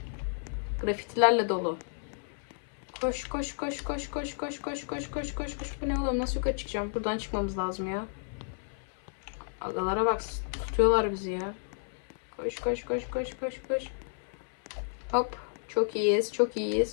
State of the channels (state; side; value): silent; right; 56 dB below the other